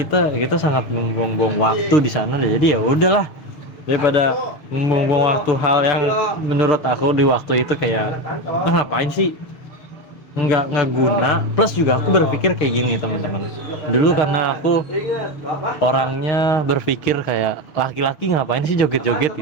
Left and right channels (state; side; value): late; right; 6.8 ms